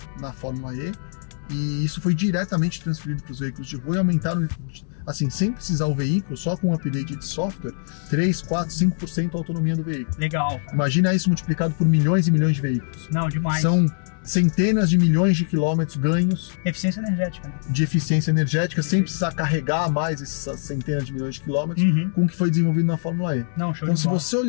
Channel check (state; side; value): silent; right; digital silence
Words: na Fórmula E, e isso foi diretamente transferido para os veículos de rua e aumentaram, assim, sem precisar o veículo, só com um update de software, 3, 4, 5% a autonomia do veículo. Legal. Imagina isso multiplicado por milhões e milhões de veículos. Não, demais. São centenas de milhões de quilômetros ganhos. Eficiência energética, né? De eficiência energética, sem precisar carregar mais essas centenas de milhões de quilômetros, com o que foi desenvolvido na Fórmula E. Não, show então, de se bola. você